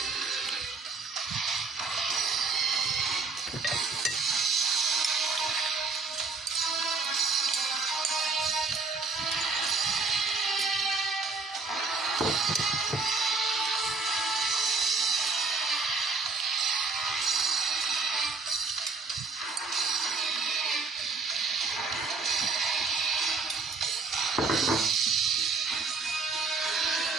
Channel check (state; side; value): quieter; left; 4.2 dB